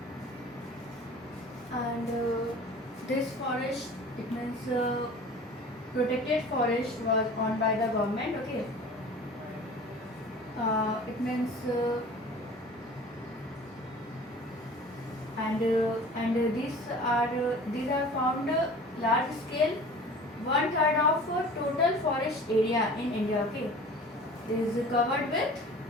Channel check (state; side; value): normal; both; correlation 0.43